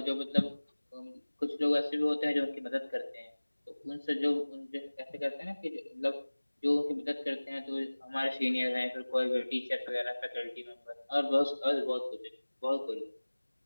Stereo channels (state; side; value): inverted; both; correlation -1.00